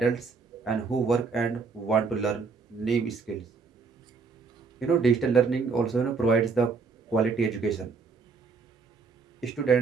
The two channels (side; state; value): left; quieter; 4.8 dB